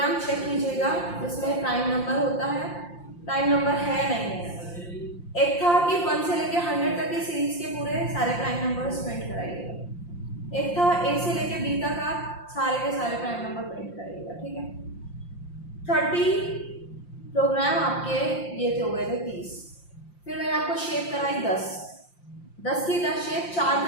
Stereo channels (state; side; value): late; right; 5.7 ms